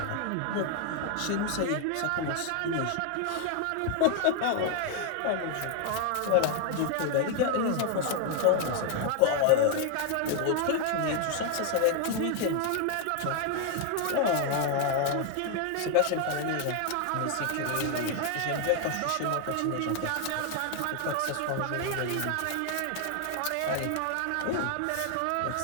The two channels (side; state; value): both; different; correlation 0.01